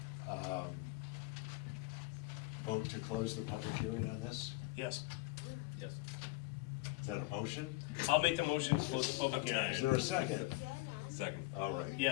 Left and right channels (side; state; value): right; quieter; 20.6 dB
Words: Vote to close the public hearing on this? Yes. Yes. Is that a motion? I'll make the motion to close the public hearing. Is there a second? Second. All right.